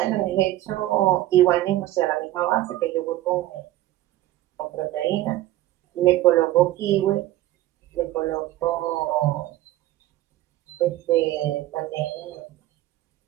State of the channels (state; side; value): quieter; left; 15.3 dB